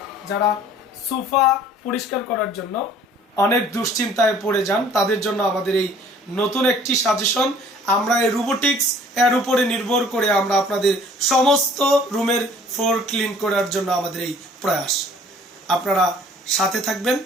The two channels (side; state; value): both; normal; correlation 0.54